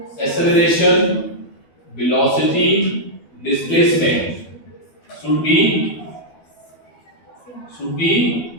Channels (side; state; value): right; late; 12 ms